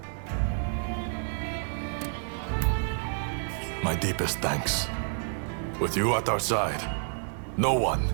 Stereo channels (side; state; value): left; silent; digital silence